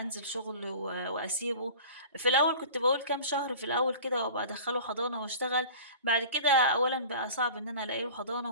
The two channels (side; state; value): both; inverted; correlation -0.40